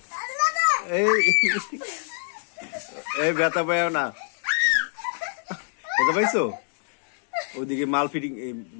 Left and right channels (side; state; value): right; silent; digital silence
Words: এই ব্যথা পাইও না, ব্যথা পাইছো? ওদিকে মাল ফিটিং